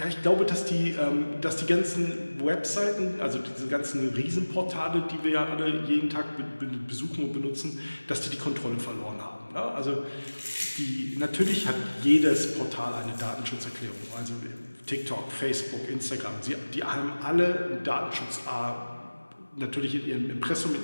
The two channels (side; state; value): both; inverted; correlation -1.00